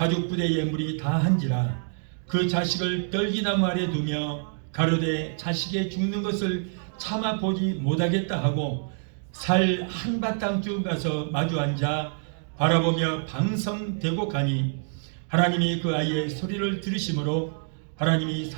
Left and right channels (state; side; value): silent; left; digital silence